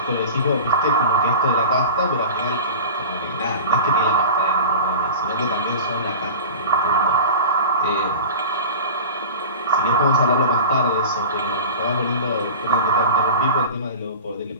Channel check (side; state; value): both; inverted; correlation -0.33